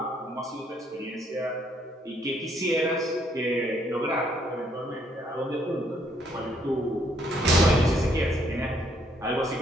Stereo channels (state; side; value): normal; both; correlation 0.69